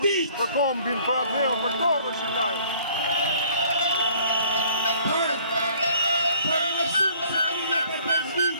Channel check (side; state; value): both; inverted; correlation -0.57